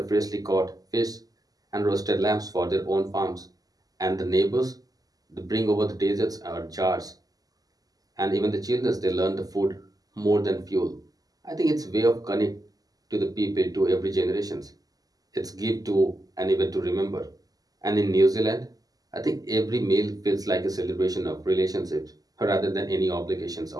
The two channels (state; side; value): late; left; 0.18 ms